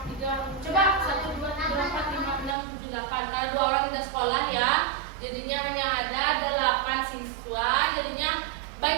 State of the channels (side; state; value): left; drops out; at 2.6 s